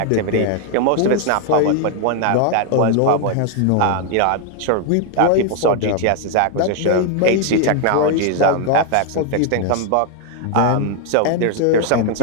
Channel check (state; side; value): different; both; correlation 0.00